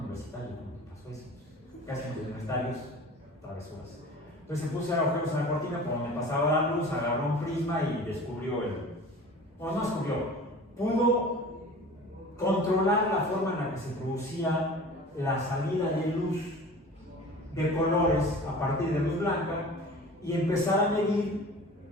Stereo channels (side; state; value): both; normal; correlation 0.40